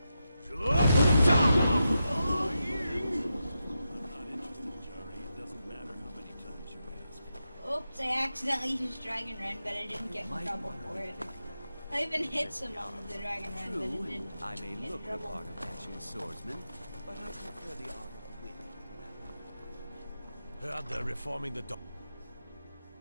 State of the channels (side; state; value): both; inverted; correlation -0.88